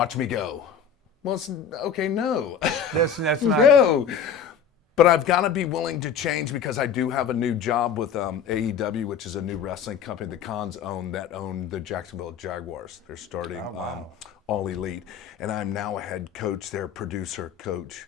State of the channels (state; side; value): quieter; right; 6.9 dB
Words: me go. Well, okay, no. That's not. No. But I've got to be willing to change because I do have a new job with AEW, which is a new wrestling company the Cons own the Jacksonville Jaguars. They're starting All Elite. And I'm now a head coach, their producer coach.